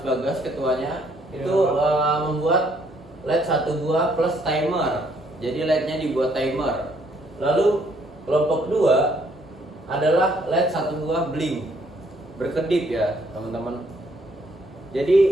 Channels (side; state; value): both; normal; correlation 0.67